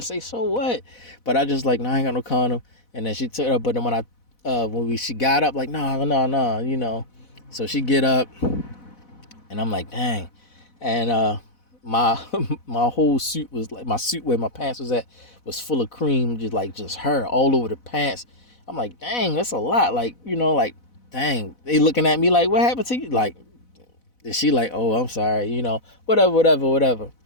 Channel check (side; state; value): right; late; 4.0 ms